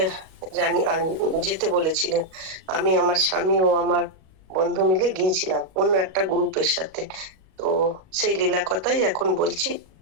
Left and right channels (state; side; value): late; left; 37 ms